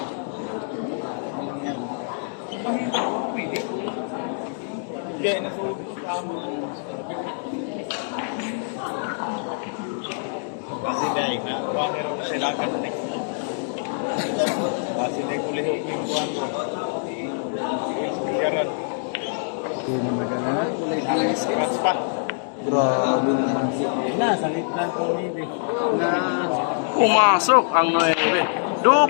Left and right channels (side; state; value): right; silent; 62 dB below the other